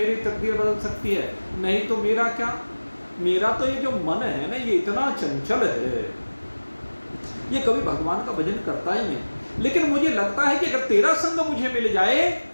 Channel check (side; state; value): both; inverted; correlation -1.00